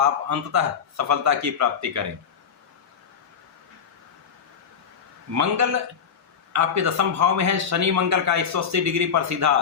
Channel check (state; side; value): quieter; right; 7.1 dB